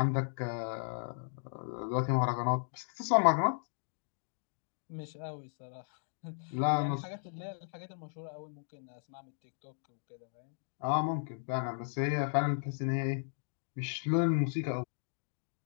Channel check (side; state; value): right; silent; digital silence